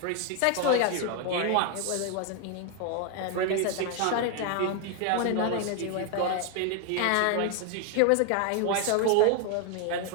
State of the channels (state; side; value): different; both; correlation 0.00